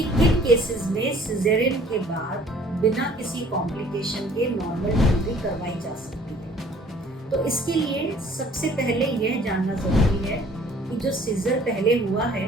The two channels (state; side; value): normal; both; correlation 0.54